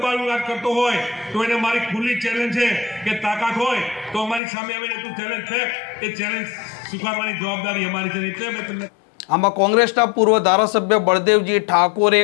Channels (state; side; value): drops out; right; at 4.4 s